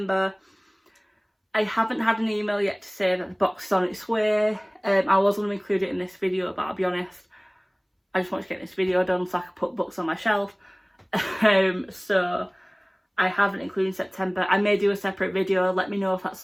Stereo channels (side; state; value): both; identical; correlation 1.00